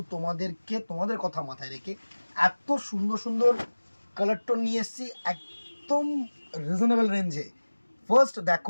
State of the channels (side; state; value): both; inverted; correlation -1.00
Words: তোমাদের কথা মাথায় রেখে এত সুন্দর সুন্দর কালার টোন নিয়ে এসেছি একদম রিজনেবল রেঞ্জে। ফার্স্ট